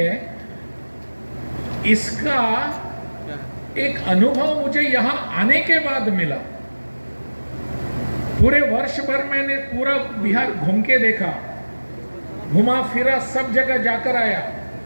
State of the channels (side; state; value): both; inverted; correlation -1.00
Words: इसका एक अनुभव मुझे यहां आने के बाद मिला। पूरे वर्ष भर मैंने पूरा बिहार घूम के देखा, घुमा फिरा, सब जगह जाकर आया।